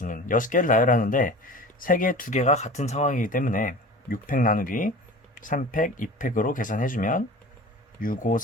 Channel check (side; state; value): both; normal; correlation 0.37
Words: 6개를 나열하는데 3개, 2개가 같은 상황이기 때문에 6팩 나누기 3팩, 2팩으로 계산해주면 6, 5,